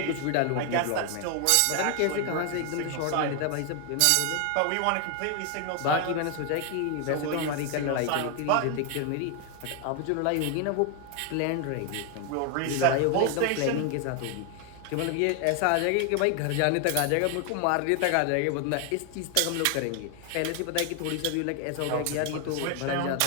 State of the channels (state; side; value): different; both; correlation 0.01